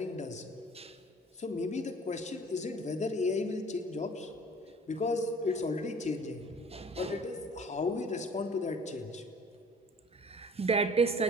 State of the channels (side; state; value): both; normal; correlation 0.49